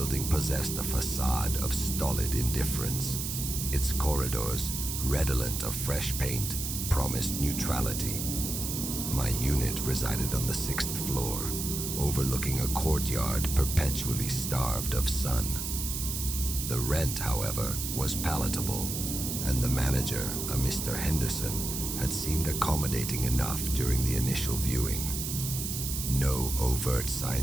possessed a facade of stolid indifference. Its corridors, redolent of fresh paint, promised neutrality. My unit resided on the 6th floor, overlooking a courtyard perpetually starved of sun. The rent, however, was palatable, and the manager, a Mr. Henderson, had seemed accommodating enough during the initial viewing. No overt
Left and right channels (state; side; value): noise; right; hiss, 4 dB below the sound